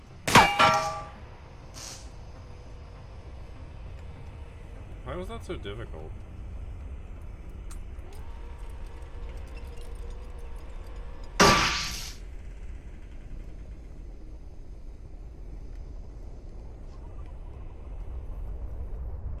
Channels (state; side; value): identical; both; correlation 1.00